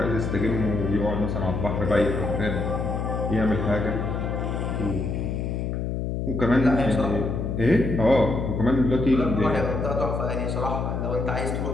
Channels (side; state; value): left; noise; hum, 2 dB below the sound